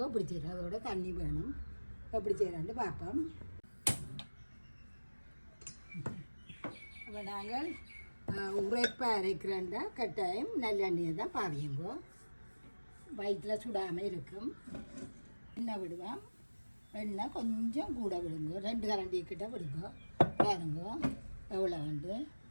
எப்படி செய்கிறோம். அதோட தண்ணி வேணும். எப்படி செய்கிறான்னு பார்ப்போம். அப்போ நாங்கள் உரைப்பாக அரைக்கிறேன்டா கட்டாயம் நல்லெண்ணெயை தான் பாவியுங்கோ. வயிற்றில் சுடாமல் இருக்கும். எண்ணெய் விடுவோம். எண்ணெய் கொஞ்சம் கூட விடுங்கோ. 2 கரண்டி கிட்ட விடுங்கோ. பாருங்கோ எவ்வளோ வந்து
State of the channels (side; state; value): both; inverted; correlation -1.00